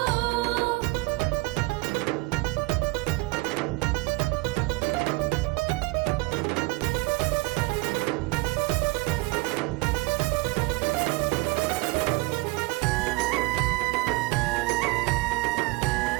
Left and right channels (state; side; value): quieter; left; 22.9 dB